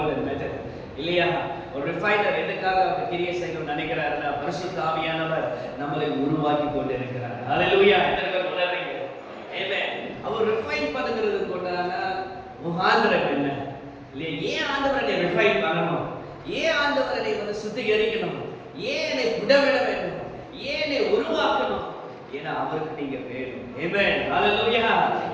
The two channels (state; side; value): identical; both; correlation 1.00